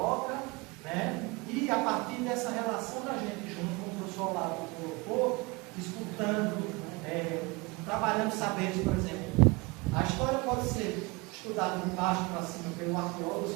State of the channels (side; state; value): left; quieter; 25.9 dB